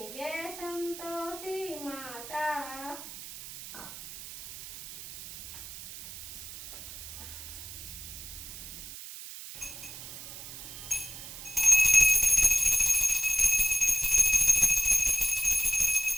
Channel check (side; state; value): right; noise; hiss, 12 dB below the sound